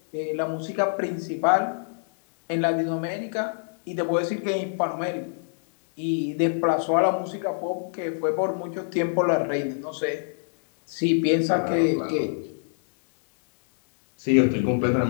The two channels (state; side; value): silent; right; digital silence